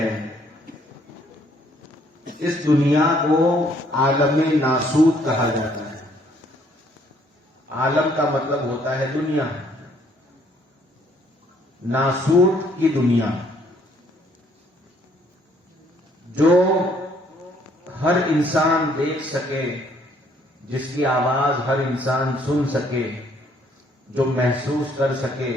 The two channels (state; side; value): normal; both; correlation 0.65